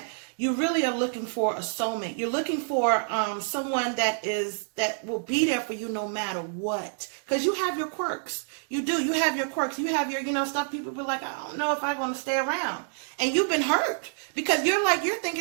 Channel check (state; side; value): silent; left; digital silence